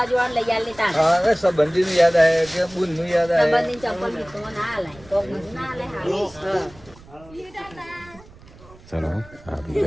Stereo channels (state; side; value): noise; right; rumble, 23 dB below the sound